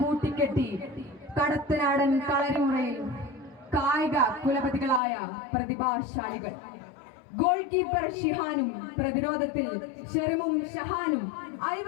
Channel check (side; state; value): right; drops out; at 5.0 s